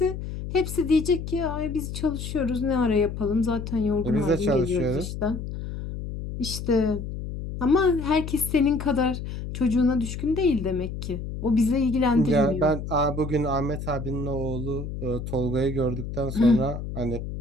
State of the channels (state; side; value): noise; left; hum, 7 dB below the sound